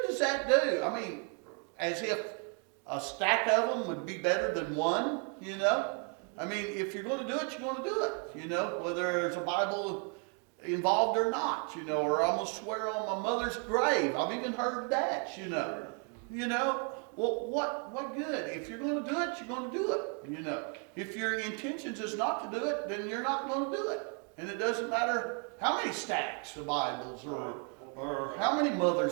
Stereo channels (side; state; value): left; quieter; 39.3 dB